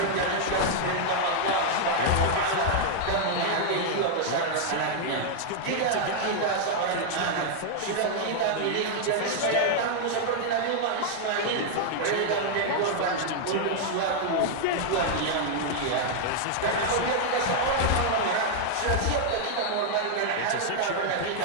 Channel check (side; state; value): both; different; correlation -0.01